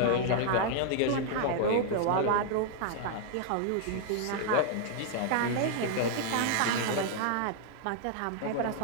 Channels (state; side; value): different; both; correlation 0.00